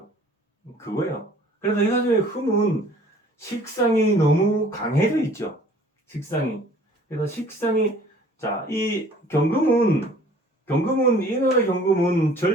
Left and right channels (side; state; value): both; normal; correlation 0.52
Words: 그거예요. 그래서 이 사주의 흠은 식상이 너무 강해져 있죠. 식상이. 그래서 식상이, 자, 이 경금은, 인월의 경금은